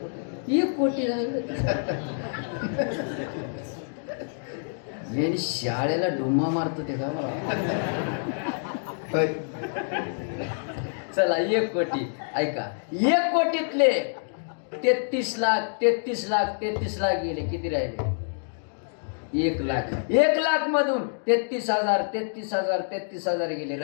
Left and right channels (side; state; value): right; silent; digital silence